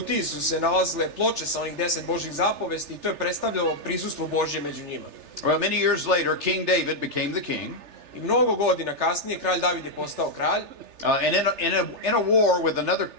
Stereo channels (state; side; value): late; left; 3.3 ms